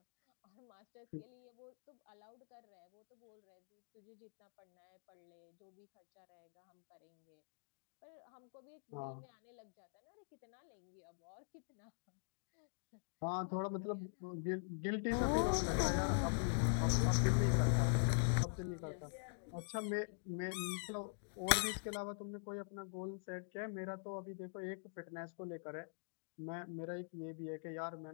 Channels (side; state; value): right; silent; digital silence